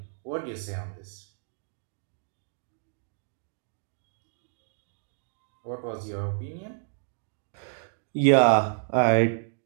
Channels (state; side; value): silent; left; digital silence